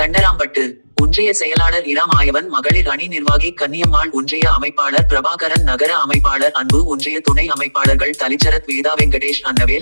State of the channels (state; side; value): inverted; both; correlation -1.00